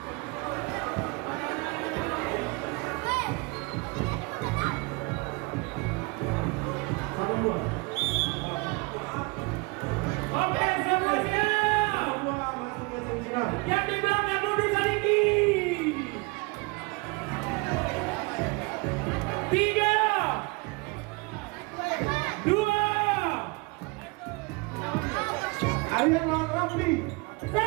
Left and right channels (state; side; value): quieter; left; 28.2 dB